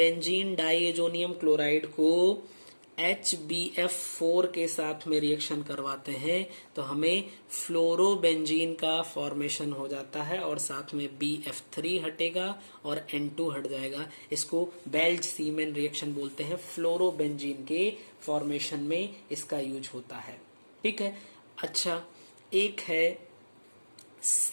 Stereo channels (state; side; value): inverted; both; correlation -1.00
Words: डाइएजोनियम क्लोराइड को HBF4 के साथ में रिएक्शन करवाते हैं तो हमें फ्लोरोबेंजीन का फॉर्मेशन हो जाता है और साथ में BF3 हटेगा और N2 हट जाएगा। इसको बेल्ज-शीमेन रिएक्शन बोलते हैं, फ्लोरोबेंजीन के फॉर्मेशन में इसका यूज होता है, ठीक है। अच्छा, एक है